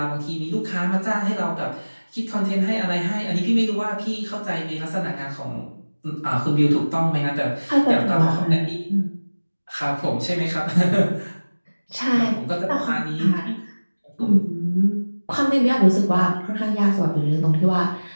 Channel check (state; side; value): inverted; both; correlation -1.00